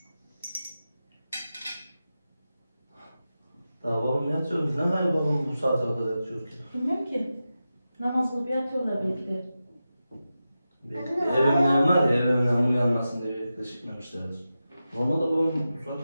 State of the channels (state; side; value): inverted; both; correlation -0.92